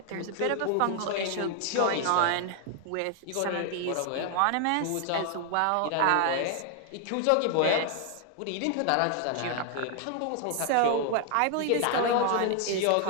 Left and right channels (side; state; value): both; different; correlation 0.00